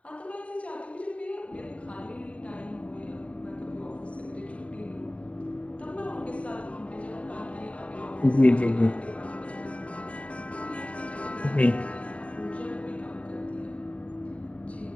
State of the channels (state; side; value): late; right; 0.065 ms